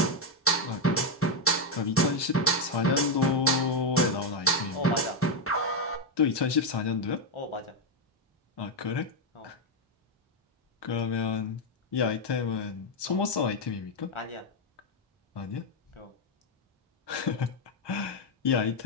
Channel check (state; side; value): normal; both; correlation 0.05